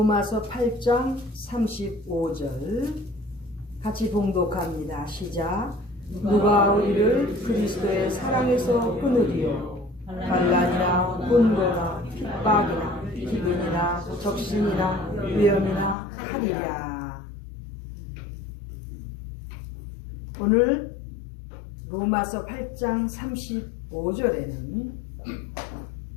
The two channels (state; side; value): drops out; right; at 16.0 s